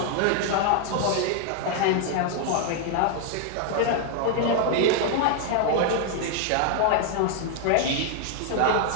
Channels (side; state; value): both; different; correlation 0.00